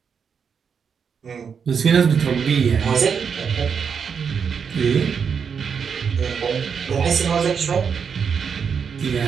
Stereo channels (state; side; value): quieter; left; 6.5 dB